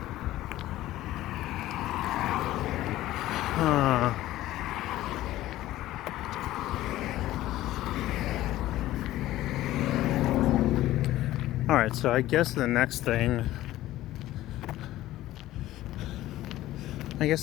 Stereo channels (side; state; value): right; quieter; 15.2 dB